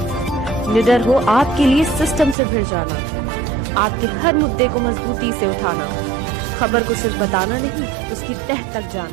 निडर हो आपके लिए सिस्टम से भिड़ जाना, आपके हर मुद्दे को मजबूती से उठाना, खबर को सिर्फ बताना नहीं उसकी तह तक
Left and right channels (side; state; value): left; drops out; at 2.4 s